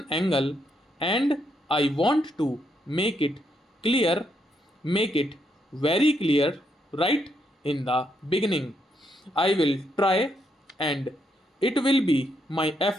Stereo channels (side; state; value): both; normal; correlation 0.78